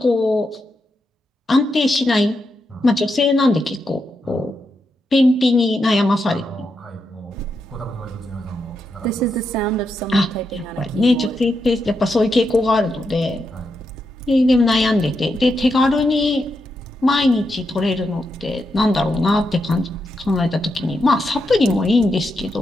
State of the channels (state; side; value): normal; both; correlation 0.84